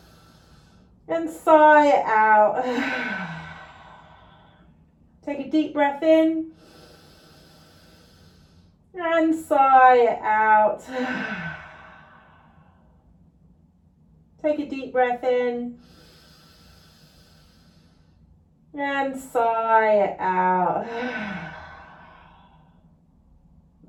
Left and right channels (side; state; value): both; identical; correlation 1.00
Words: and sigh it out. Take a deep breath in and sigh it out. Take a deep breath in and sigh it out.